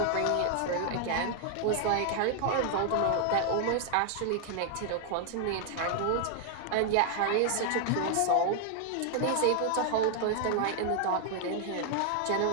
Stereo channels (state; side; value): different; both; correlation 0.00